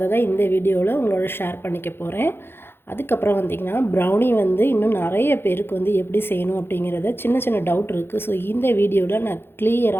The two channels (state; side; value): late; right; 0.11 ms